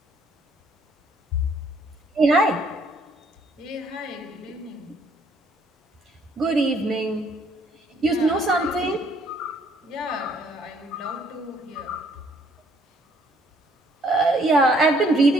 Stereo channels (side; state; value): both; normal; correlation 0.64